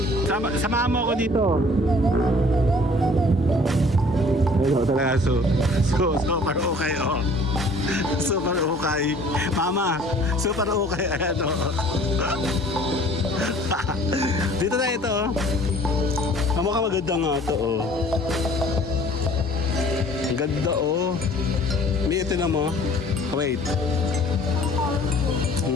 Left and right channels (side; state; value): both; normal; correlation 0.52